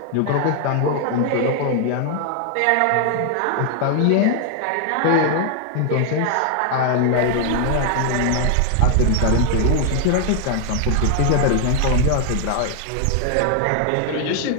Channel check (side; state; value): both; different; correlation 0.00